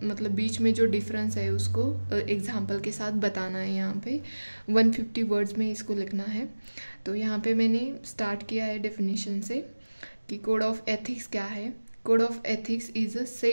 मतलब बीच में जो डिफरेंस है उसको एग्जाम्पल के साथ बताना है। यहाँ पे 150 वर्ड्स में इसको लिखना है। तो यहाँ पे मैंने स्टार्ट किया है डेफिनेशन से कि कोड ऑफ एथिक्स क्या है। Code of ethics is a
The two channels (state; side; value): inverted; both; correlation -1.00